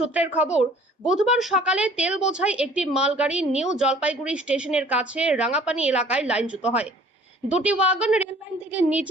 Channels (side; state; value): both; normal; correlation 0.52